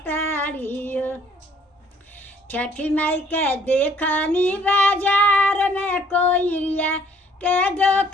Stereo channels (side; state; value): both; normal; correlation 0.60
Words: तारी हो। छठी माई के देखनी बाजार में कोइरिया के